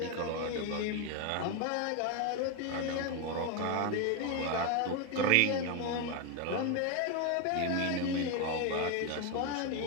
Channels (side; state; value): both; different; correlation 0.02